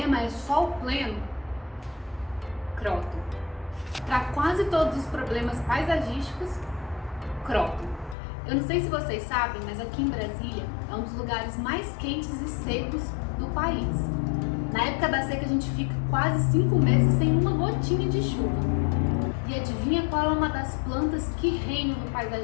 é sol pleno? Croton. Para quase todos os problemas paisagísticos? Croton. Eu não sei se vocês sabem, mas aqui em Brasília é um dos lugares mais quentes e secos do país. Na época da seca a gente fica quase 5 meses sem uma gotinha de chuva. E adivinha qual é uma das plantas que reinam no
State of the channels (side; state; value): right; drops out; at 8.2 s